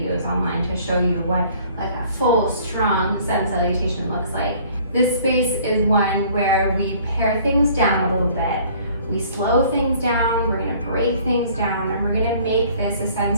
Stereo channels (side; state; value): both; inverted; correlation -0.55